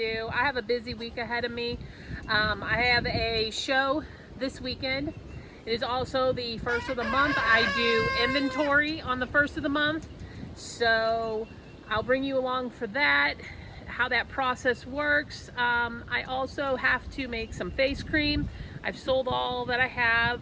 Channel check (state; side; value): identical; both; correlation 1.00